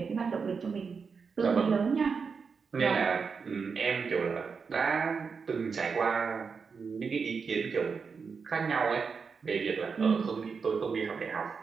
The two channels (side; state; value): left; quieter; 5.5 dB